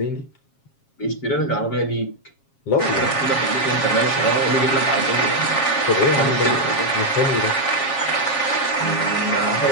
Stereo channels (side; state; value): right; late; 7.3 ms